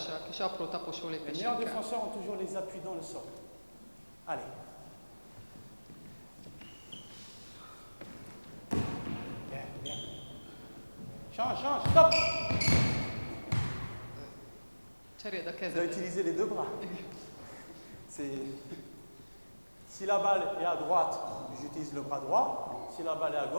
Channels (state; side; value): inverted; both; correlation -1.00